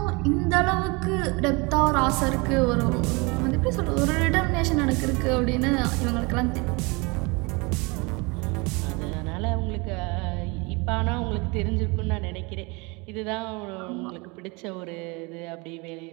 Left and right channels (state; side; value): quieter; left; 27.8 dB